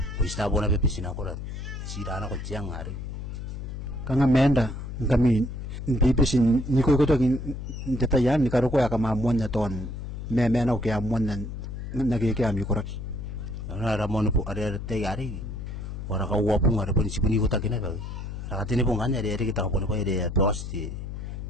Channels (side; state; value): left; noise; hum, 7 dB below the sound